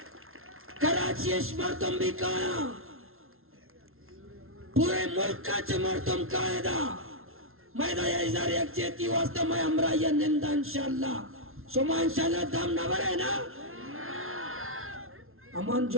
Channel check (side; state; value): left; late; 0.62 ms